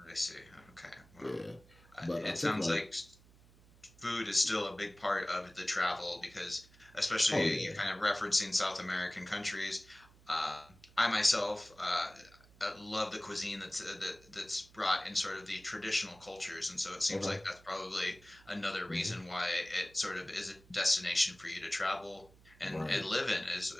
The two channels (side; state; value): right; noise; hum, 25 dB below the sound